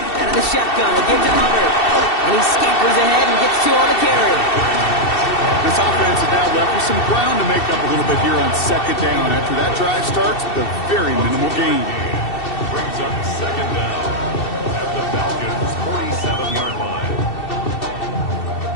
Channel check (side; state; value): right; late; 2.7 ms